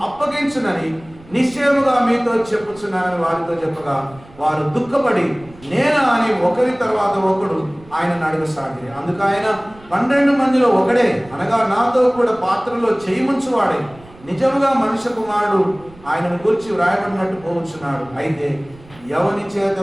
అప్పగించునని నిశ్చయముగా మీతో చెప్పుచున్నానని వారితో చెప్పగా వారు దుఃఖపడి నేనా అని ఒకరి తర్వాత ఒకడు ఆయనను అడగసాగి. అందుకు ఆయన 12 మందిలో ఒకడే అనగా నాతో కూడా పాత్రలో చేయి ముంచువాడే నిజముగా మనుష్య కుమారుడు ఆయనను గురించి వ్రాయబడినట్టు పోవచ్చున్నాడు. అయితే ఎవని చేత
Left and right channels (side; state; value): right; noise; rumble, 23 dB below the sound